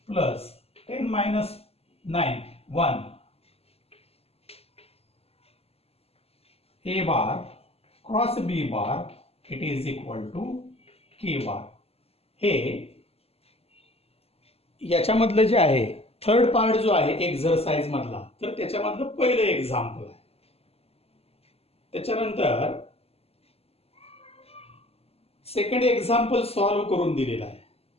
plus 10 minus 9 1 A bar cross B bar it is equal to K bar. हे याच्यामधलं जे आहे थर्ड पार्ट जो आहे एक्झरसाइज मधला तर त्याच्यामधलं पहिलं एक्झाम्पल आहे. त्याच्यानंतर सेकंड एक्झाम्पल सॉल्व्ह करून दिलेला आहे.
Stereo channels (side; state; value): right; late; 0.29 ms